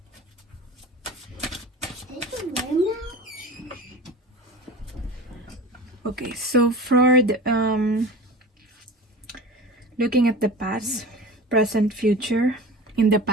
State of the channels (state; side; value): normal; both; correlation 0.35